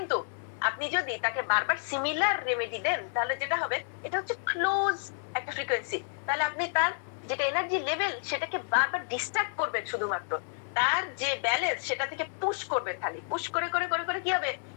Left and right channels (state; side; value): silent; right; digital silence